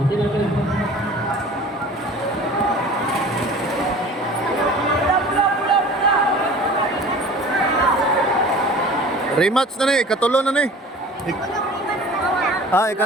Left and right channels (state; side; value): normal; both; correlation 0.42